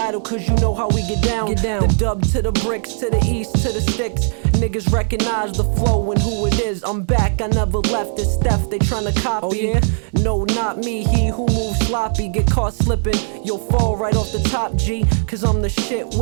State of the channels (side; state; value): left; silent; 67 dB below the other